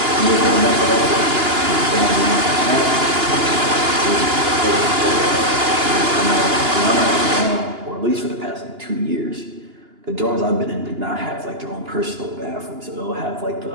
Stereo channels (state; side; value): late; left; 2.9 ms